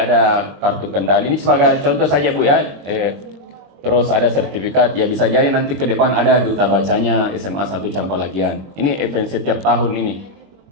ada kartu kendali. Ini sebagai contoh saja Bu ya. Terus ada sertifikat, ya bisa jadi nanti ke depan ada duta bacanya SMA 1 Campalagian. Ini event setiap tahun ini.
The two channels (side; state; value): left; late; 21 ms